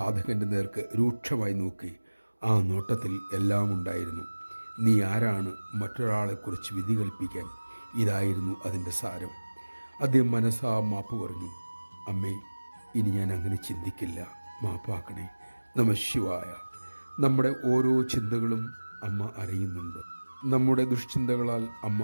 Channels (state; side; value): inverted; both; correlation -1.00